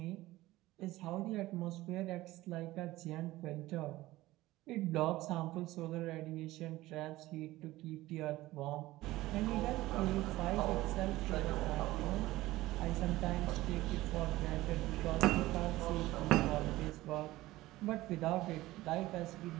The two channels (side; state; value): left; quieter; 17.5 dB